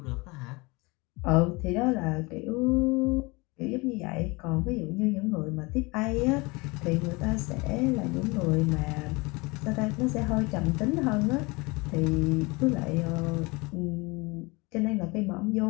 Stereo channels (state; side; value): quieter; right; 25.6 dB